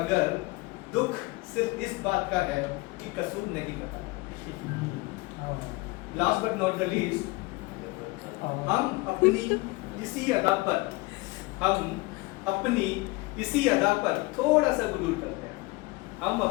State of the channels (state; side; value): quieter; right; 23.6 dB